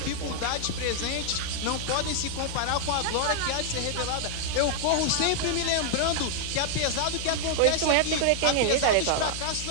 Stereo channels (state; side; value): different; both; correlation 0.00